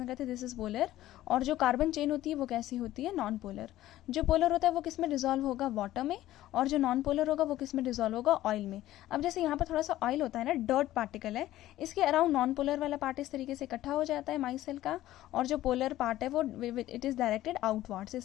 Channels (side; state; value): right; quieter; 14.6 dB